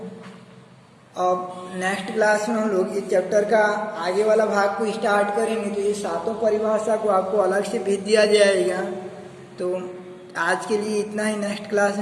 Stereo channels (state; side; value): identical; both; correlation 1.00